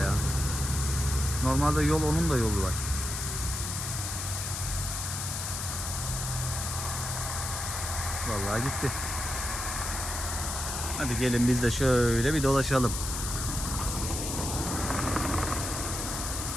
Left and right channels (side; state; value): left; noise; hiss, 4 dB below the sound